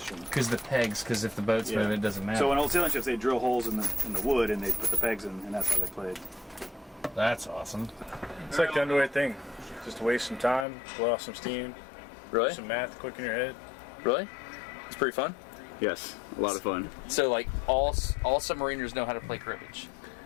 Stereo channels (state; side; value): drops out; right; at 10.7 s